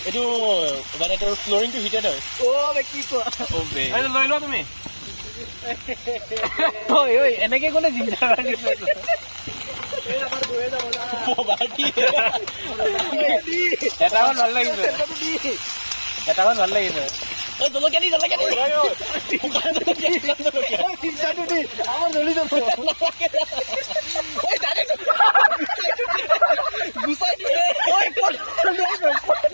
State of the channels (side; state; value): both; inverted; correlation -1.00